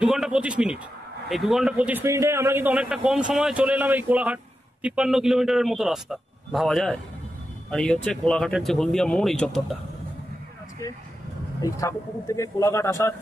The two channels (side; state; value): both; normal; correlation 0.89